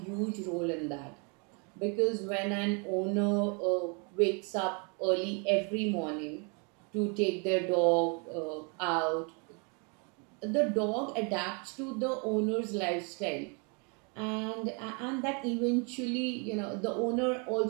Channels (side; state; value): left; quieter; 34.9 dB